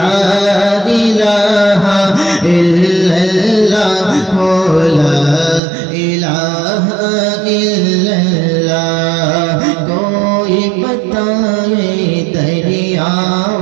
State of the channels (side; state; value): left; drops out; at 5.6 s